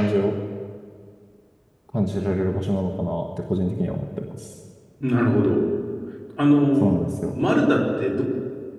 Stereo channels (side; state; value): both; identical; correlation 1.00